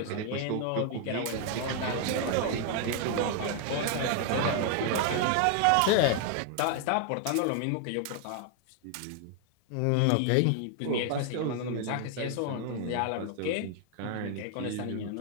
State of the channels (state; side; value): different; both; correlation 0.00